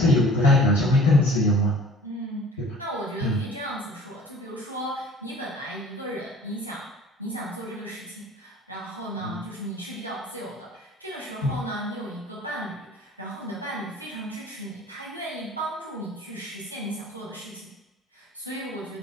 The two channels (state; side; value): normal; both; correlation 0.47